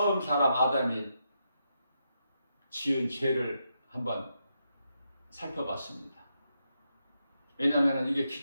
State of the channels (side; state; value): both; inverted; correlation -0.83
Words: 사람 아담이 지은 죄를 한번 살펴봤습니다. 왜냐하면 이게